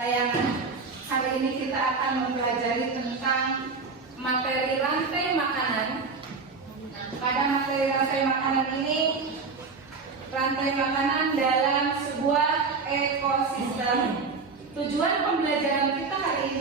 Hari ini kita akan mempelajari tentang materi rantai makanan. Pada materi rantai makanan ini, rantai makanan dalam sebuah ekosistem. Tujuan pembelajaran kita hari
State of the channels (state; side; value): quieter; left; 4.5 dB